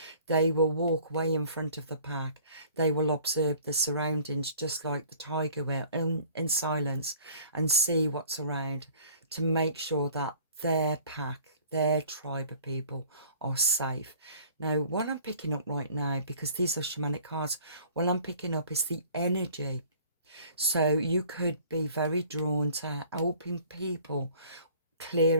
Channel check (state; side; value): inverted; both; correlation -0.52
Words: They will walk way in front of the pack. They will observe the surroundings just like the tiger will in silence and see what's around to make sure that their pack, their tribe of people are safe. Now, what I'm picking up right now, because these are shamanic cards, what I'm picking up is the energy. So you could be very drawn to helping people,